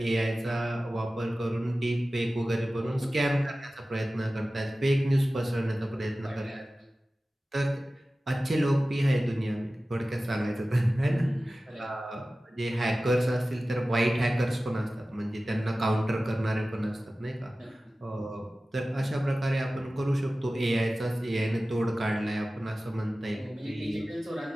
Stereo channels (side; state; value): both; normal; correlation 0.96